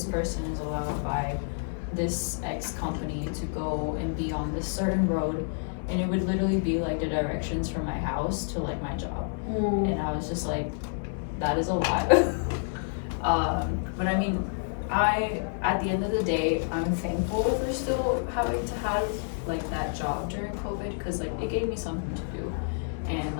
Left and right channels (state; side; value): silent; right; digital silence